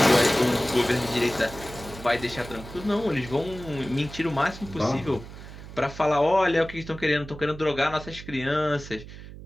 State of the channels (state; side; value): noise; right; hum, 14 dB below the sound